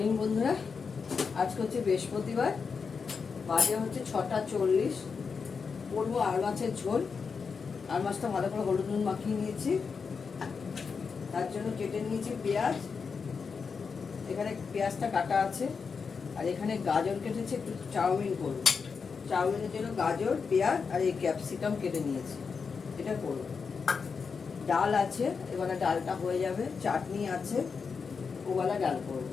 বন্ধুরা। আজকে হচ্ছে বৃহস্পতিবার, বাজে হচ্ছে 6টা 40। করবো আর মাছের ঝোল। আর মাছটা ভালো করে হলুদ নুন মাখিয়ে নিয়েছি, তার জন্য কেটে নিয়েছি পেঁয়াজ। এখানে পেঁয়াজটা কাটা আছে, আর এখানে গাজর কেটেছি, একটু চাউমিন করবো। চাউমিনের জন্য গাজর, পেঁয়াজ আর এই ক্যাপসিকাম কেটে নিয়েছি, এটা করবো। ডাল আছে, এবারে ডালটা হয়ে যাবে। চাটনি আছে, ওবেলা ডাল করবো।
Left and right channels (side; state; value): right; quieter; 5.5 dB